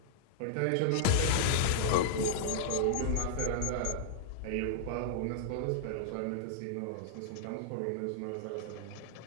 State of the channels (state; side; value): different; both; correlation -0.01